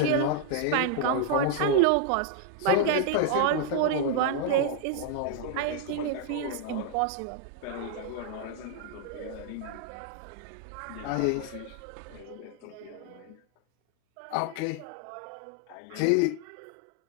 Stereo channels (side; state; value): both; different; correlation 0.00